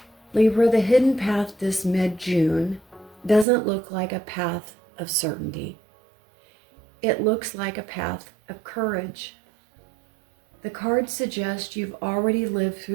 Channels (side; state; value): left; drops out; at 3.5 s